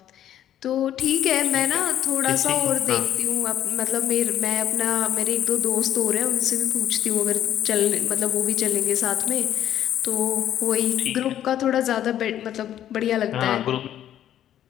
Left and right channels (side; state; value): right; quieter; 11.1 dB